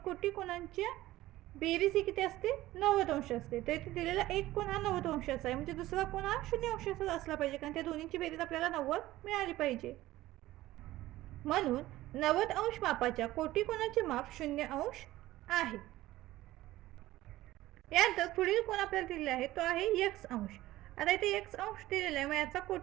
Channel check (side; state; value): left; quieter; 16.3 dB